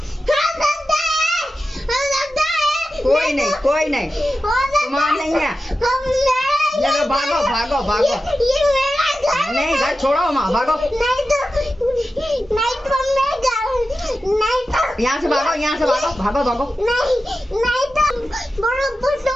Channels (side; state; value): both; normal; correlation 0.92